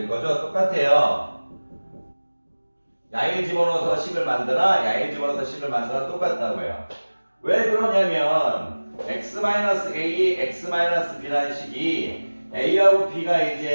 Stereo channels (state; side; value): inverted; both; correlation -1.00